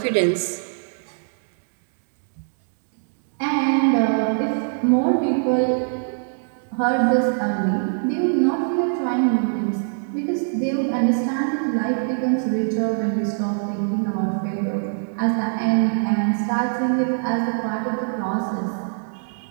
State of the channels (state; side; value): silent; left; digital silence